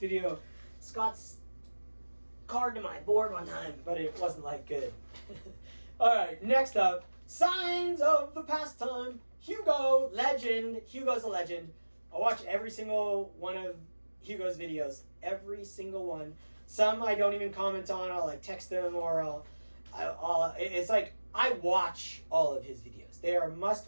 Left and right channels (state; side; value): inverted; both; correlation -1.00